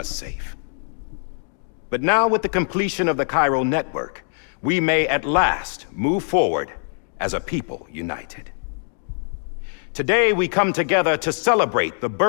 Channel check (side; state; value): right; silent; 64 dB below the other